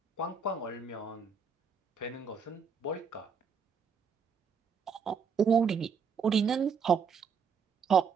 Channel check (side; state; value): left; quieter; 6.0 dB